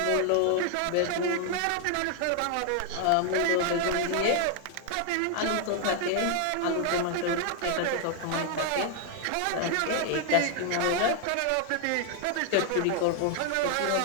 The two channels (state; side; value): different; both; correlation 0.00